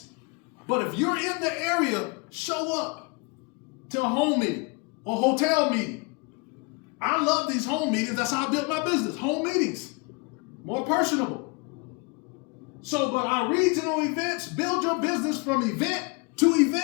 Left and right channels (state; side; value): quieter; right; 30.1 dB